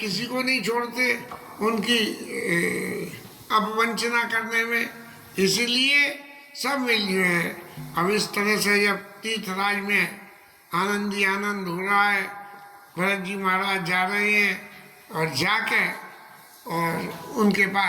को नहीं छोड़ते उनकी अपवंचना करने में। इसीलिए सब मिल जो है। अब इस तरह से जब तीर्थराज में आनंद ही आनंद हो रहा है, भरत जी महाराज जा रहे हैं और जाके और उनके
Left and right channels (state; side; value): identical; both; correlation 1.00